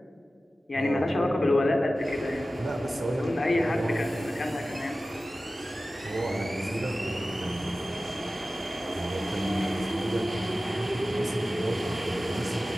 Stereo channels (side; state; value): both; normal; correlation 0.95